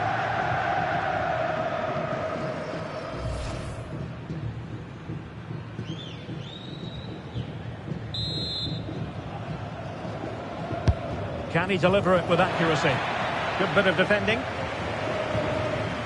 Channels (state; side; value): identical; both; correlation 1.00